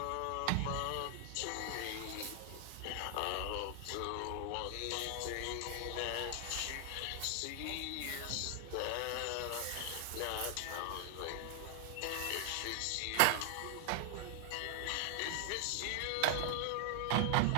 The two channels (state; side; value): different; both; correlation 0.00